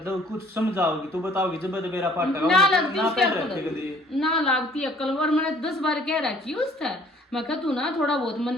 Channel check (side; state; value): both; normal; correlation 0.57